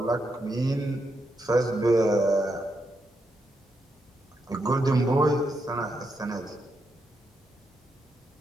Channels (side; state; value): both; normal; correlation 0.82